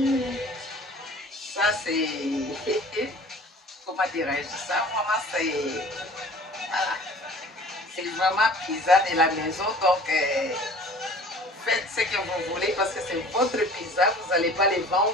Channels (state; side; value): normal; both; correlation 0.47